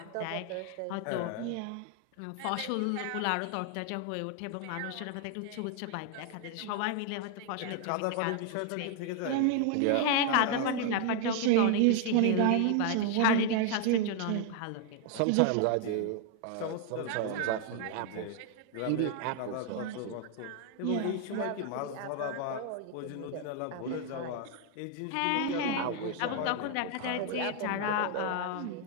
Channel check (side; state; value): both; different; correlation 0.00